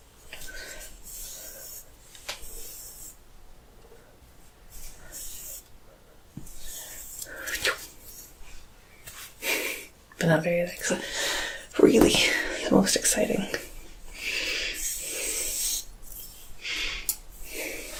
But not very, like, really the most exciting.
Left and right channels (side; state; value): both; identical; correlation 1.00